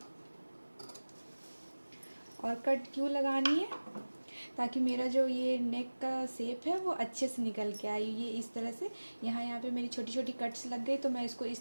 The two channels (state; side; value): inverted; both; correlation -1.00